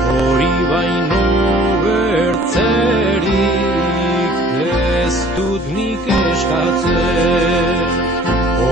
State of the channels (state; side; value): normal; both; correlation 0.52